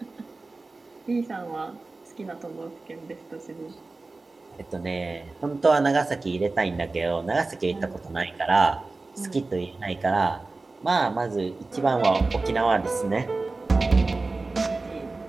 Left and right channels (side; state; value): left; quieter; 3.5 dB